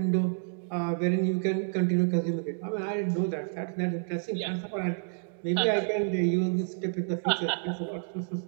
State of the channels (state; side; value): silent; left; digital silence